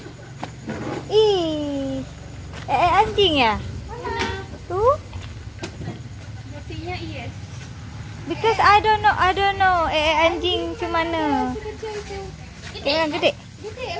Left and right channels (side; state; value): both; identical; correlation 1.00